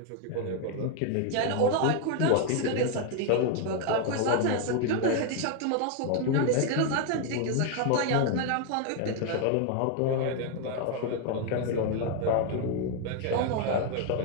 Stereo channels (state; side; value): different; both; correlation 0.00